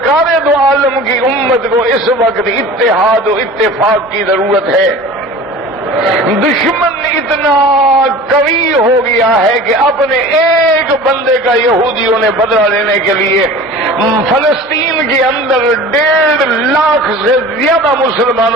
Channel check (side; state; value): both; normal; correlation 0.40